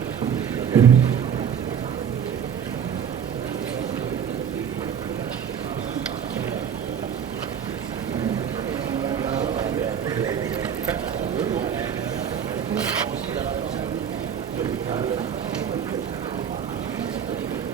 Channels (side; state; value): left; quieter; 8.1 dB